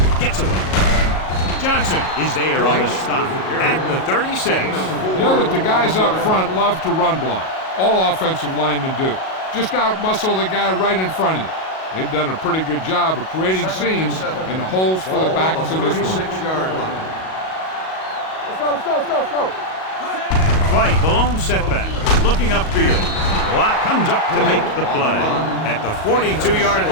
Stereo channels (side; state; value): right; late; 38 ms